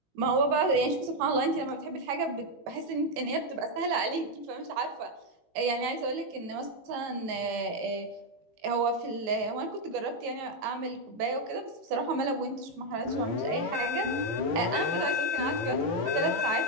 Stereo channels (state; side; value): late; left; 18 ms